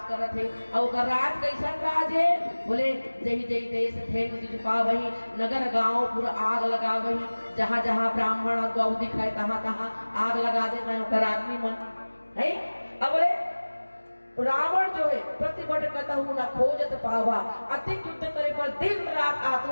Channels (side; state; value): both; inverted; correlation -1.00